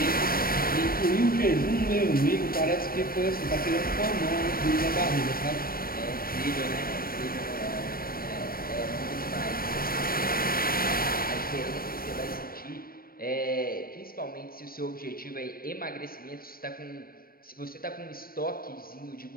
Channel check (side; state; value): right; late; 0.43 ms